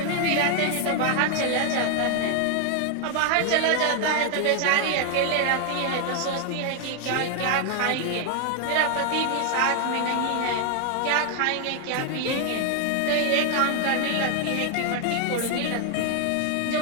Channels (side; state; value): both; different; correlation 0.00